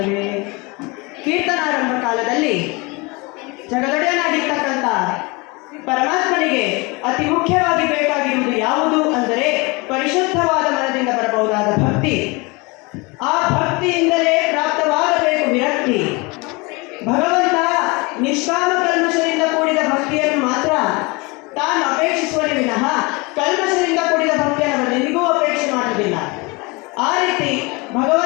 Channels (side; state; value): right; quieter; 26.6 dB